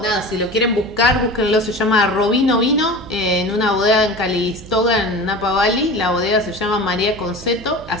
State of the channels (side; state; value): right; noise; hum, 17 dB below the sound